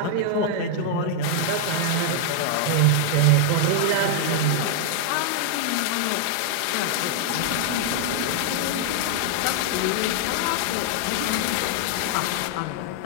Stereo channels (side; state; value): both; different; correlation -0.01